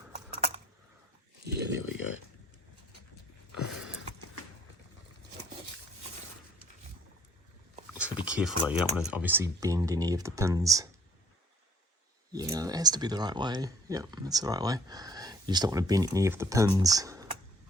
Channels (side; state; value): both; normal; correlation 0.58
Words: yeah, there we go. Just gotta be careful though, you don't want to obviously bend any of the pins. Yeah, that has to be the right way. Yep, that's the right way. You just don't want to bend any of the pins.